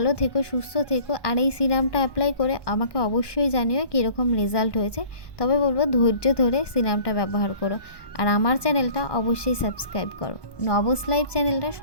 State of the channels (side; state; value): right; late; 1.1 ms